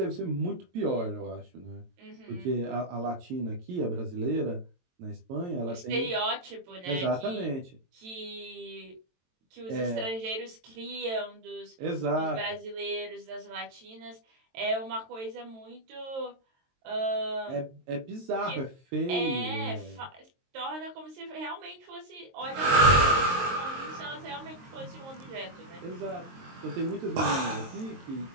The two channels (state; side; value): late; left; 22 ms